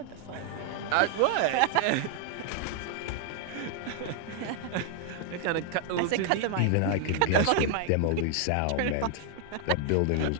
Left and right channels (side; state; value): both; different; correlation 0.00